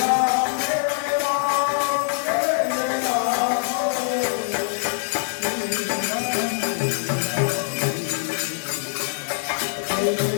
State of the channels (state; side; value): silent; right; digital silence